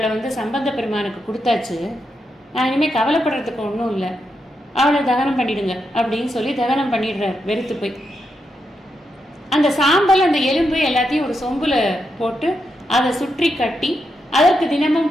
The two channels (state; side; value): normal; both; correlation 0.84